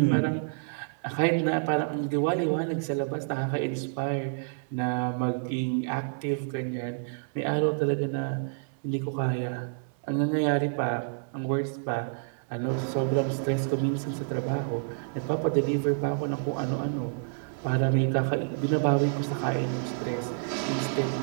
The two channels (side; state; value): left; silent; 59 dB below the other